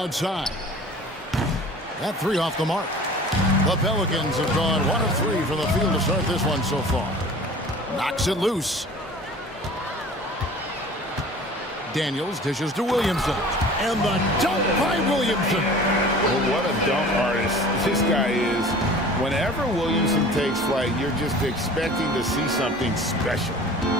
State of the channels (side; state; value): both; normal; correlation 0.43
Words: That 3 off the mark. The Pelicans have gone 1 of 3 from the field to start this one so far. Knocks it loose. Daniels dishes to Williamson. And the dunk by Williamson. Well, what a dunk artist this guy is. Whenever Williamson takes flight, you're just expecting to see something special.